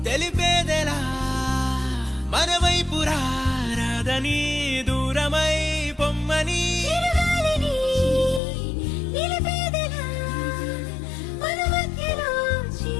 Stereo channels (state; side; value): drops out; right; at 8.4 s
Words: తెలిపేదెలా మన వైపు రాదని దూరమై పొమ్మని చిరుగాలిని నిలిపేదెలా మన మధ్యలో